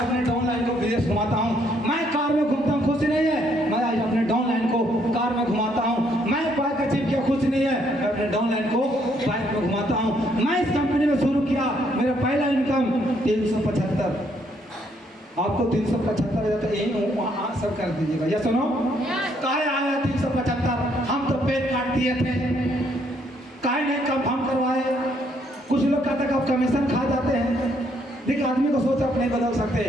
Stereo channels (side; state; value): both; normal; correlation 0.70